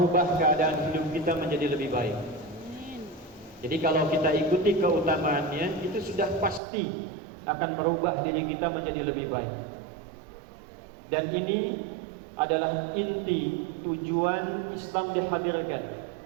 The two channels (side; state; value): left; drops out; at 6.6 s